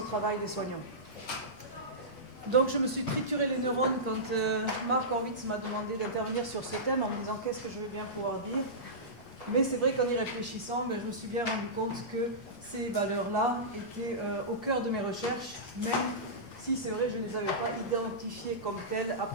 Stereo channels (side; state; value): right; late; 8.4 ms